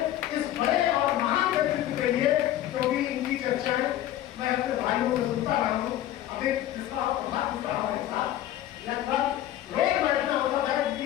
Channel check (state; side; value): quieter; right; 12.9 dB